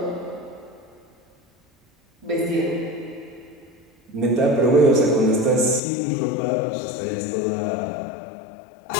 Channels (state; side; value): drops out; right; at 5.8 s